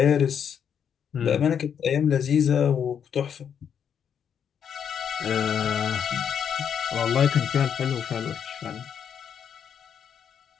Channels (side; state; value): right; quieter; 8.0 dB